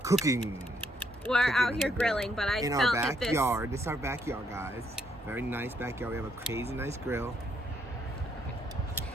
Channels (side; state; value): both; normal; correlation 0.72